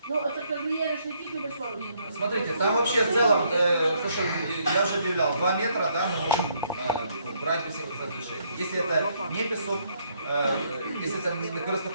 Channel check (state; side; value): inverted; both; correlation -0.70